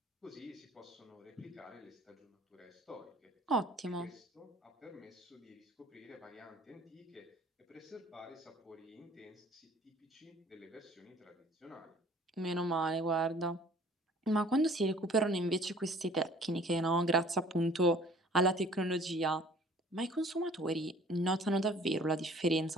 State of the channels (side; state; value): both; normal; correlation 0.53